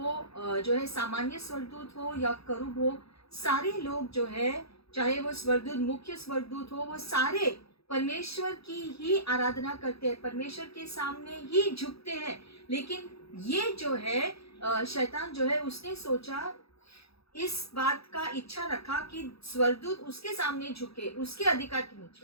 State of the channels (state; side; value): late; right; 0.77 ms